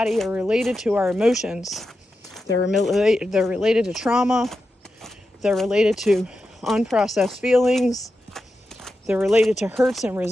are related to our emotions. They're related to trauma. They're related to unprocessed feelings. They're related to hurts and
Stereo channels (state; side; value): normal; both; correlation 0.89